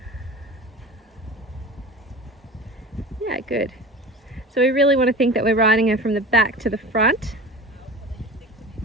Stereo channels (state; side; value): normal; both; correlation 0.34